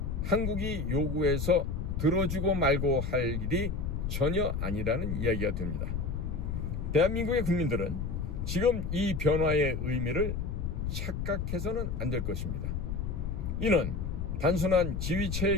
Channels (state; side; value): noise; left; rumble, 2 dB below the sound